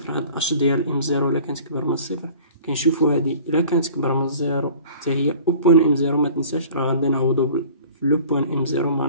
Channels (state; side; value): inverted; both; correlation -0.46